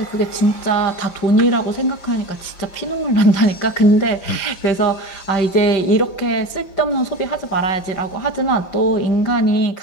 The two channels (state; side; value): late; right; 5.7 ms